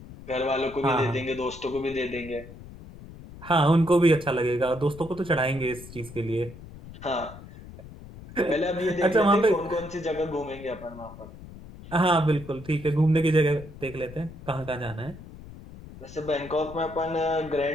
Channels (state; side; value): noise; left; rumble, 16 dB below the sound